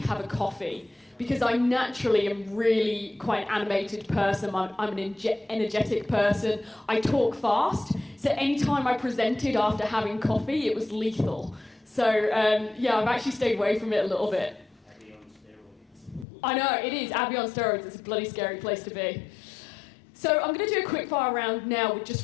a coffee. Because I naturally am really quite an animated person, I'm an energetic person, I talk fast, so anytime I presented after having coffee, it was lethal. So yeah, I've actually stayed away from it a little bit. Abbie on steroids. I know, it is, Abbie on steroids, it's a bloody scary place to be. So I'm going to do a quick fire round now with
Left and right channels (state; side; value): drops out; right; at 16.2 s